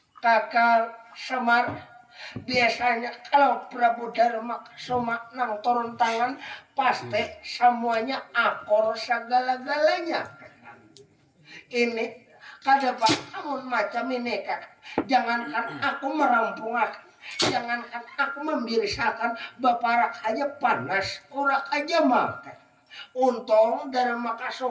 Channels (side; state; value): both; identical; correlation 1.00